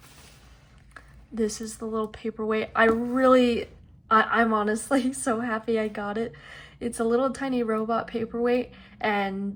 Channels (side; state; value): both; identical; correlation 1.00